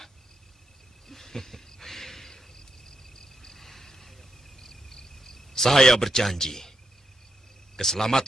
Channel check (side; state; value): both; normal; correlation 0.82